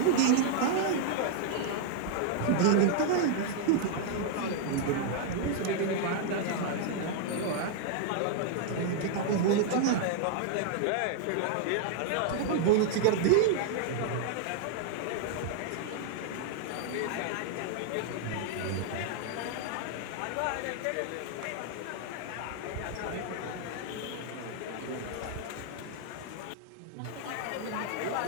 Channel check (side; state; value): both; different; correlation -0.01